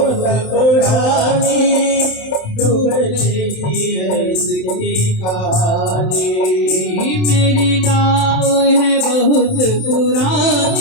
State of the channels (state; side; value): late; right; 27 ms